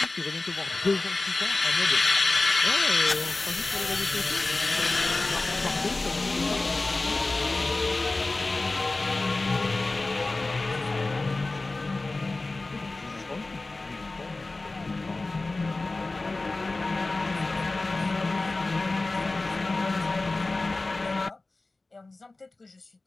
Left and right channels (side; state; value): right; quieter; 3.3 dB